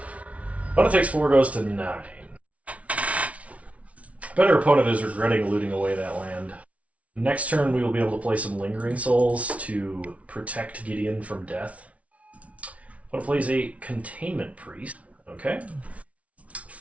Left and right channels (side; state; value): left; late; 0.065 ms